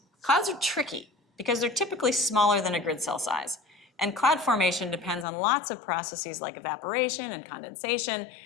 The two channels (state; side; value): drops out; right; at 5.2 s